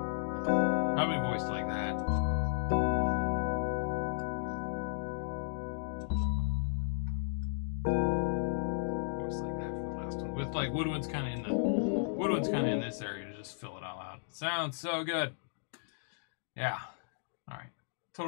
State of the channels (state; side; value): silent; right; digital silence